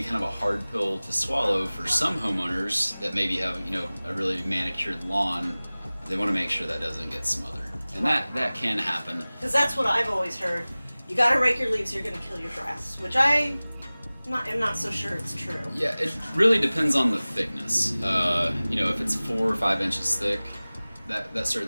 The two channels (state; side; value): inverted; both; correlation -0.99